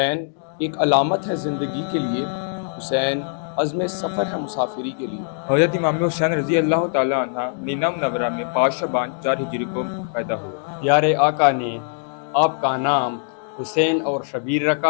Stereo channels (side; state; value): right; silent; digital silence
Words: एक अलामत है ज़िंदगी के लिए। हुसैन अज़्म सफ़र है मुसाफिरी के लिए। हज़रत इमाम हुसैन रज़ी अल्लाह ताला अन्हा मदीना मुनव्वरा में 5 शबान 4 हिजरी को पैदा हुए। प्यारे आका ने आपका नाम हुसैन और शबीर